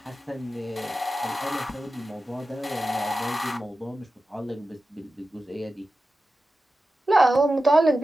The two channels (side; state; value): both; normal; correlation 0.93